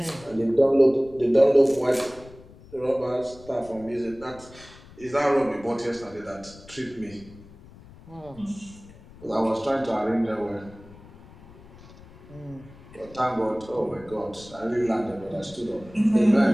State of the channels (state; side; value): noise; left; rumble, 21 dB below the sound